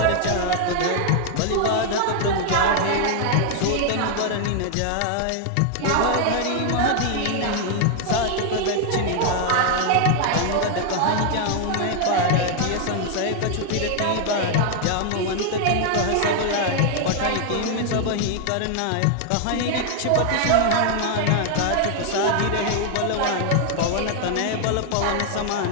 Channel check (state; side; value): different; both; correlation 0.00